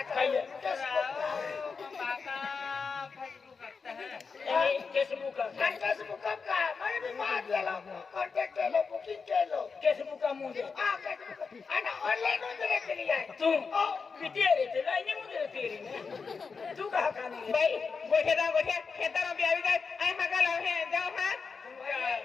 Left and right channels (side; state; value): right; quieter; 5.1 dB